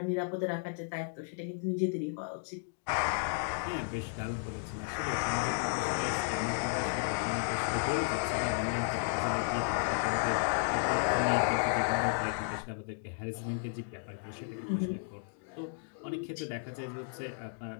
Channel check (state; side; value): silent; right; digital silence